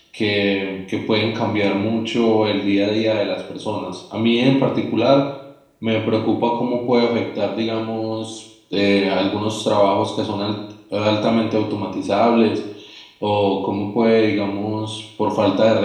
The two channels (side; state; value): both; identical; correlation 1.00